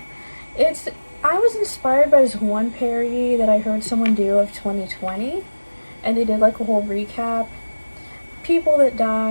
I was inspired by this one parody that I heard someone do of 2020, and they did like a whole recap, people that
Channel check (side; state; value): both; inverted; correlation -1.00